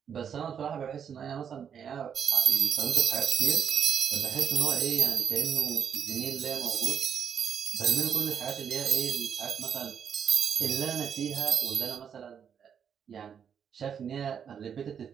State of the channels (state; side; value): quieter; left; 7.8 dB